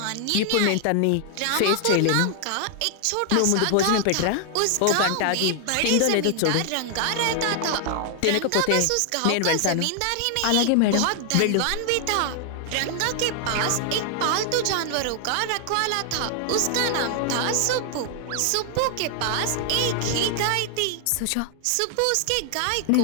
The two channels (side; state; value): both; different; correlation 0.00